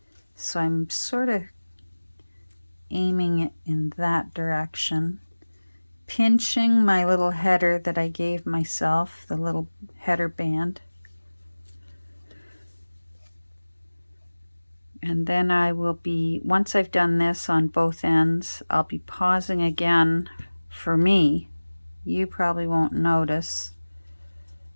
So I'm sort of aiming it in that direction. Pinching my little header that I gave myself, the little header band. And then I will be, once I've done this on both ends, I'll be pausing again for me. You probably won't notice,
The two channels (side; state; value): both; inverted; correlation -1.00